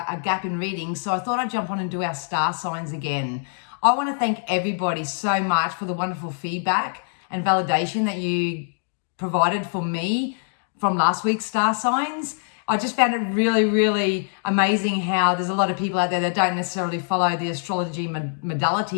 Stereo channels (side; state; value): right; silent; digital silence